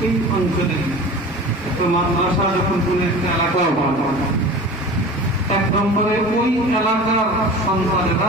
এই অঞ্চলে একটা মাদ্রাসা যখন কোন একটা এলাকায় বাড়ানো, 1 নম্বরে ওই এলাকার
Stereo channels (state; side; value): normal; both; correlation 0.37